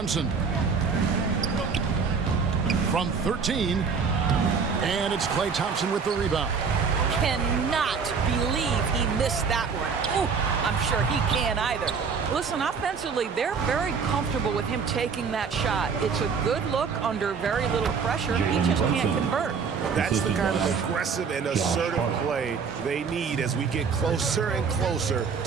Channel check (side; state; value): left; quieter; 5.7 dB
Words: From 13. And it's Klay Thompson with the rebound. Cannot believe he missed that one. Ooh, I'm sure he can't either. Listen, offensively, they're very comfortable with him taking that shot. It's a good look under very little pressure. He just can't convert. That's the kind of aggressive and assertive play they need as we get closer and closer